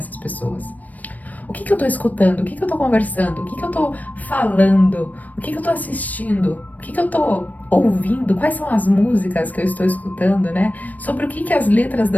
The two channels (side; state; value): right; late; 0.077 ms